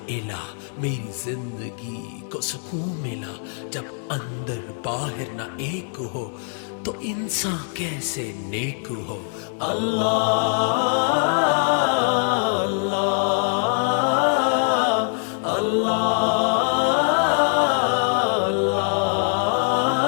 الہ میری زندگی کو سکون ملا۔ جب اندر باہر نہ ایک ہو تو انسان کیسے نیک ہو۔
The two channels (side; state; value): right; silent; 63 dB below the other